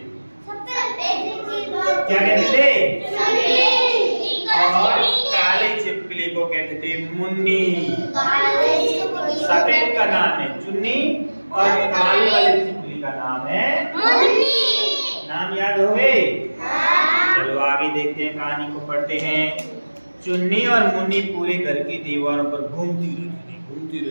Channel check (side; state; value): both; inverted; correlation -1.00